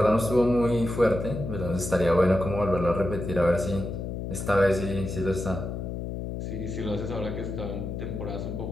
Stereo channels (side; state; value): left; noise; hum, 5 dB below the sound